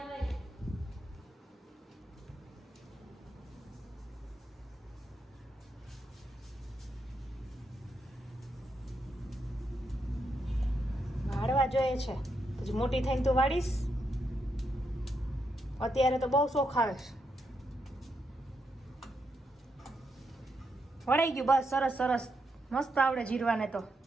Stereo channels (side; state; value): both; normal; correlation 0.81